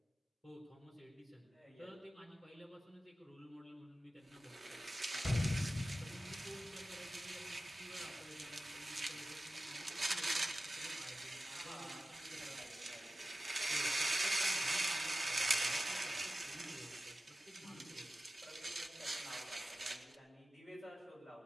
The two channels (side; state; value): both; normal; correlation 0.95